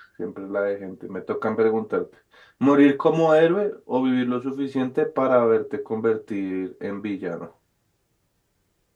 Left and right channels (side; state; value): both; identical; correlation 1.00